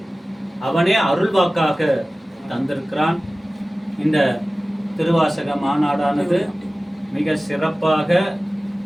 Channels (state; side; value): normal; both; correlation 0.97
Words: அவனே அருள்வாக்காக தந்திருக்கிறான். இந்த திருவாசக மாநாடானது மிக சிறப்பாக